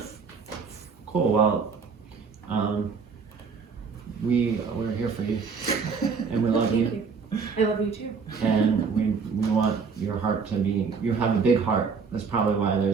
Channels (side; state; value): left; quieter; 5.3 dB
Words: Cool. Well, we're here for you, and we love you, I love you too. and we want your heart to be. You have a big heart. That's probably why